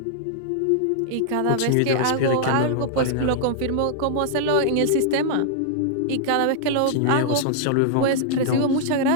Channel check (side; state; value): both; different; correlation -0.01